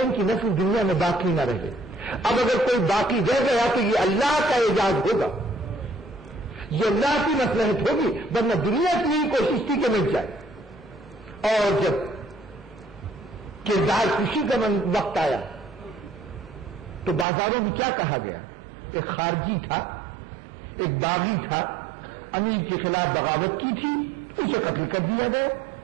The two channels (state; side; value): drops out; left; at 17.2 s